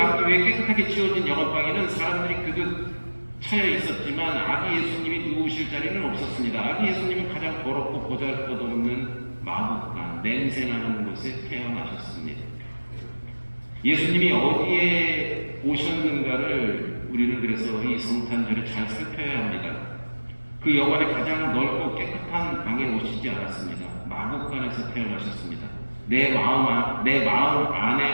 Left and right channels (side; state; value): both; inverted; correlation -1.00